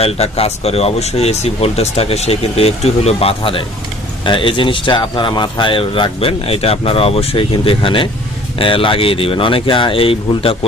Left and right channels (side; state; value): both; normal; correlation 0.52